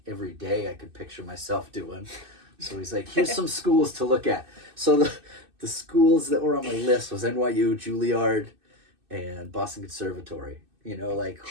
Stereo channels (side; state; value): left; late; 2.6 ms